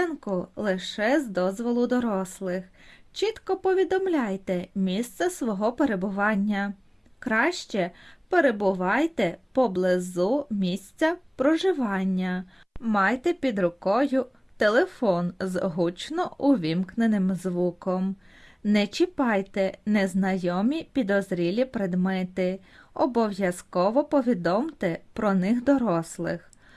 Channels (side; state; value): both; identical; correlation 1.00